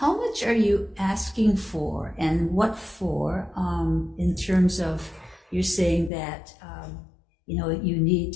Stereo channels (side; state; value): right; drops out; at 6.1 s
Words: much are you asking for, and what for, in terms of, you're saying that you